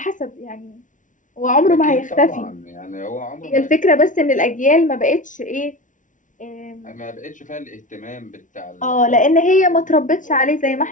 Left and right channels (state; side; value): late; right; 0.37 ms